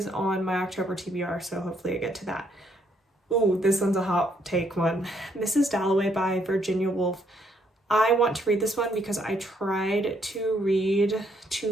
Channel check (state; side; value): normal; both; correlation 0.71